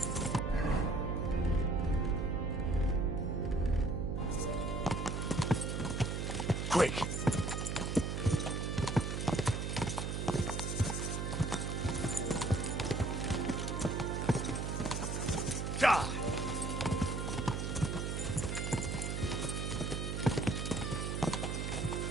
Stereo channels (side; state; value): right; noise; hum, 2 dB below the sound